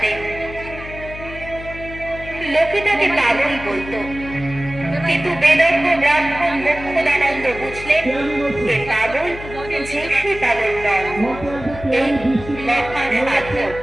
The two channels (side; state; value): left; noise; hum, 13 dB below the sound